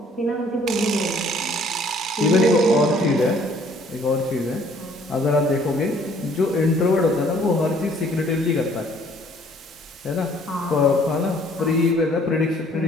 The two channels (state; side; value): normal; both; correlation 0.59